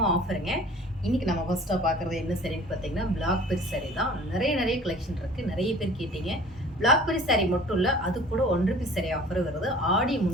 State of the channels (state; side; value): normal; both; correlation 0.47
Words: ஆஃபருங்க. இன்னைக்கு நம்ம ஃபர்ஸ்டா பார்க்கறது என்ன சரின்னு பார்த்தீங்கன்னா பிளாக் பெரி சாரி தான். நிறைய கலெக்ஷன் இருக்கு. நிறைய பேர் கேட்டீங்க. பிளாக் பெரி சாரி மட்டும் இல்ல, அது கூட 1 ரூபி சாரி ஆஃபர் வருது. ஆடியை